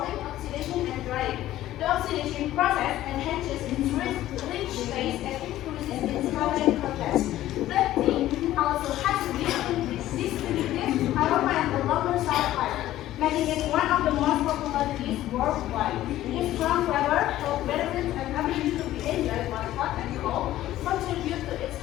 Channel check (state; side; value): quieter; right; 14.1 dB